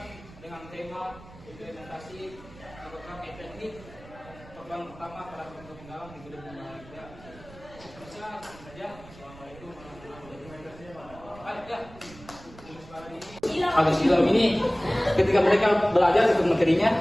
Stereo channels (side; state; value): right; noise; rumble, 20 dB below the sound